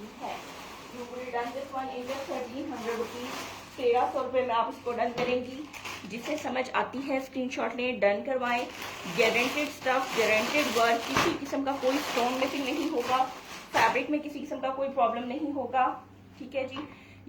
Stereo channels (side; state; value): both; identical; correlation 1.00